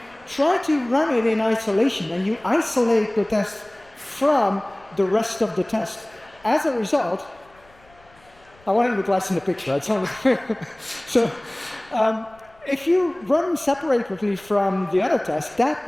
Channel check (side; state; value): left; noise; rumble, 30 dB below the sound